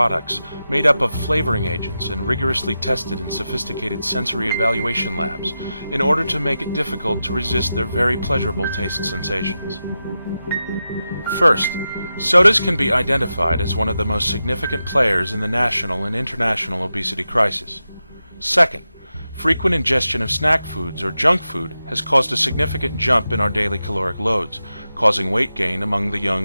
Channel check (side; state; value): both; inverted; correlation -0.91